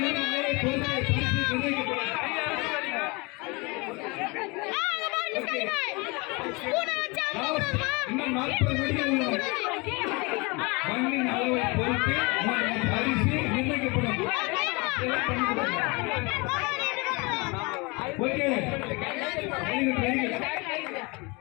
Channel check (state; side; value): quieter; right; 27.5 dB